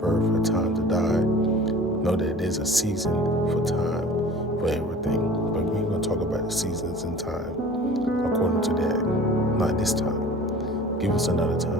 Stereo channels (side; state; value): both; normal; correlation 0.43